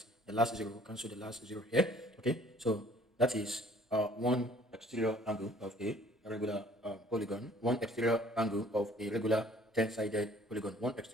the last zero will cancel the last zero here. Okay, so that is one exterior angle of a regular polygon, one exterior angle of a regular 10-sided polygon, one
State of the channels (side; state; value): both; normal; correlation 0.56